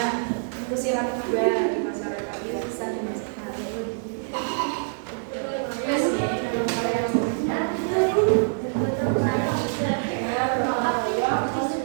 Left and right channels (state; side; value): silent; left; 61 dB below the other